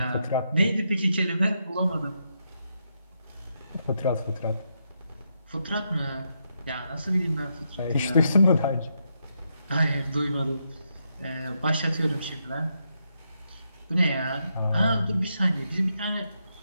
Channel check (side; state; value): both; inverted; correlation -0.81